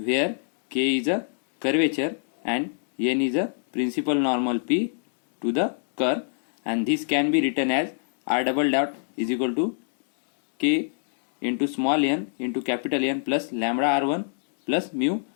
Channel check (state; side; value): silent; right; digital silence